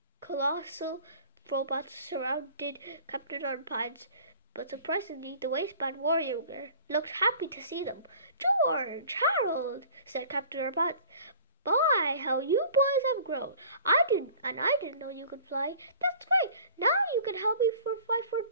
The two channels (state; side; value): inverted; both; correlation -0.47